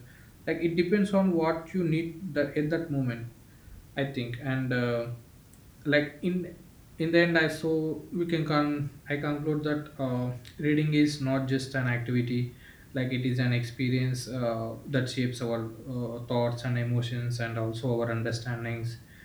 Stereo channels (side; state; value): both; identical; correlation 1.00